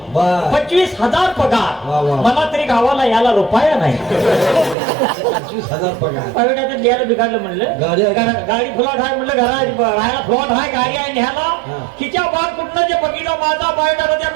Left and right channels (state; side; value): drops out; left; at 4.8 s